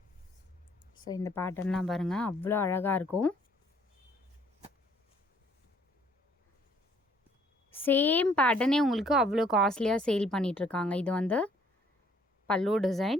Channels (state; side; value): normal; both; correlation 0.62